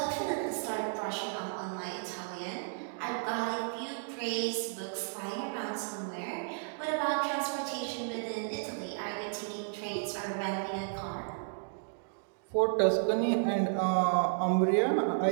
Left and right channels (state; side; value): silent; left; digital silence